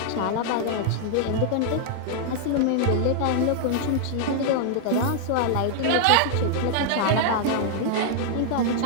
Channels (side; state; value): both; different; correlation -0.01